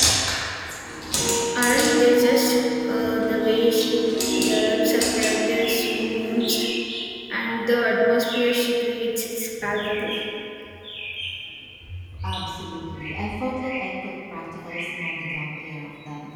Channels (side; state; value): both; identical; correlation 1.00